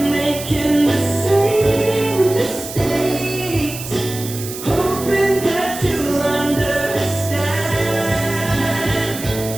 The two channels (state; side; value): noise; right; hiss, 10 dB below the sound